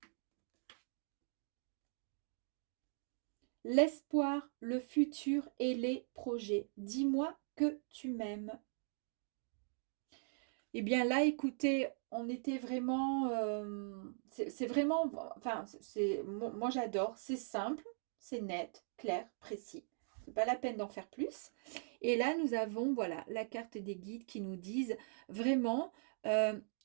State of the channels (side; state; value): left; silent; digital silence